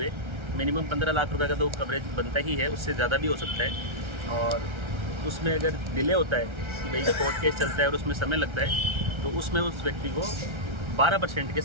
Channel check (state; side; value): late; left; 1.3 ms